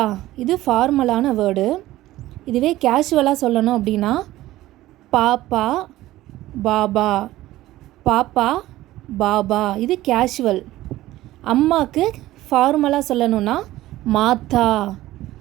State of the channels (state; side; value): quieter; left; 16.0 dB